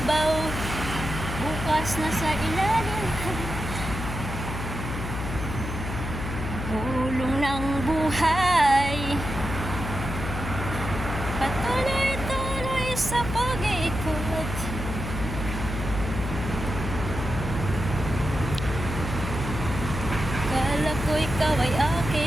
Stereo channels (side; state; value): left; noise; hum, 5 dB below the sound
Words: bukas nasa ilalim. Gulong ng buhay, patuloy-tuloy sa pag-ikot. Akala ko ikaw ay